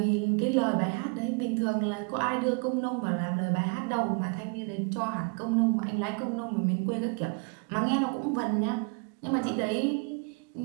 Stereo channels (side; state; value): left; quieter; 33.8 dB